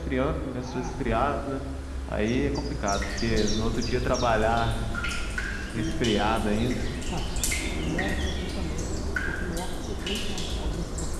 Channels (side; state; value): both; identical; correlation 1.00